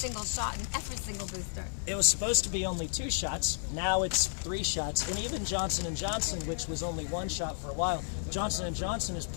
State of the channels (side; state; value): right; silent; digital silence